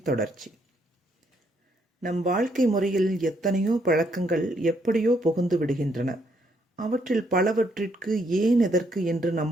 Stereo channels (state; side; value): normal; both; correlation 0.72